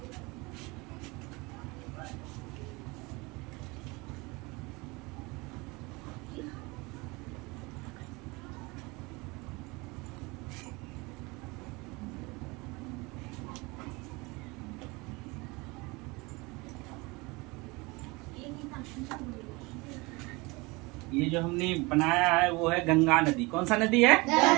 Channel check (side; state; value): left; quieter; 25.0 dB